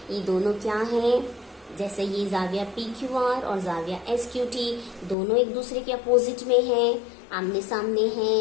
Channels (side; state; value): right; drops out; at 5.2 s